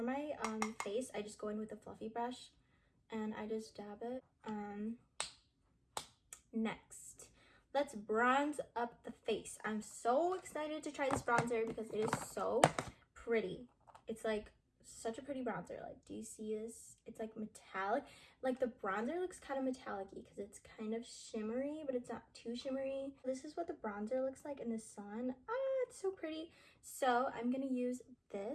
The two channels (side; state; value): both; identical; correlation 1.00